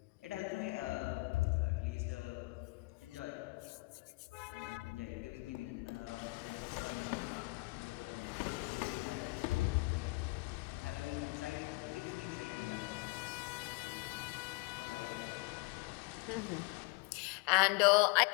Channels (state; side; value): quieter; right; 26.3 dB